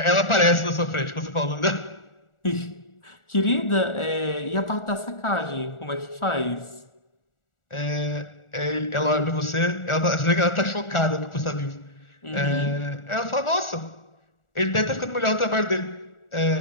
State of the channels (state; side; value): late; right; 1.4 ms